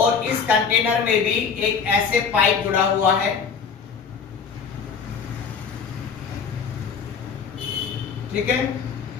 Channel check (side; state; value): right; quieter; 6.1 dB